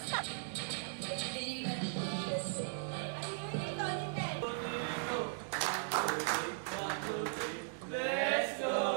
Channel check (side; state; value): left; silent; digital silence